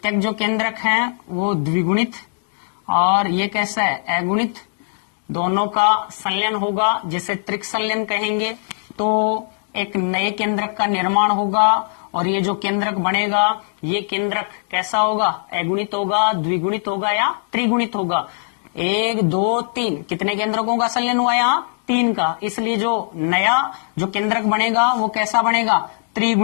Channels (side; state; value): right; silent; digital silence